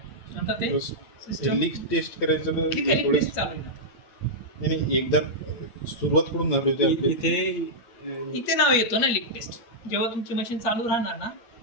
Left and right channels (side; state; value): right; late; 8.6 ms